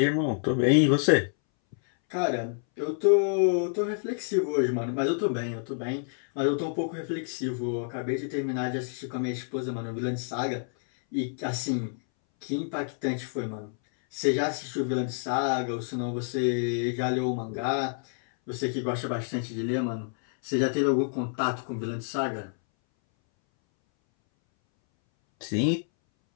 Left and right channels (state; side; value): silent; right; 59 dB below the other